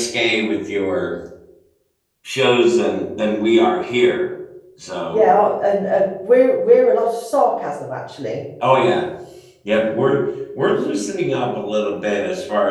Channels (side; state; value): both; identical; correlation 1.00